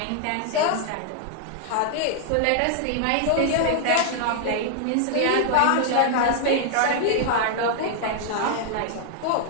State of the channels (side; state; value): both; different; correlation -0.01